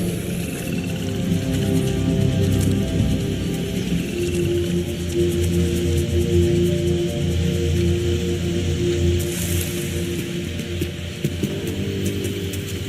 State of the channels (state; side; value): identical; both; correlation 1.00